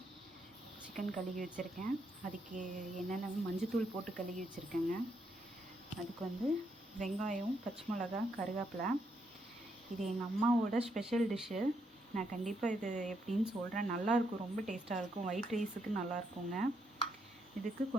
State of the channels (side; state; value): both; normal; correlation 0.77